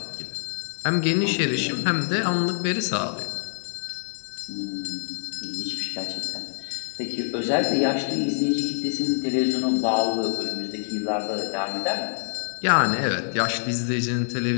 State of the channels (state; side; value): silent; right; 61 dB below the other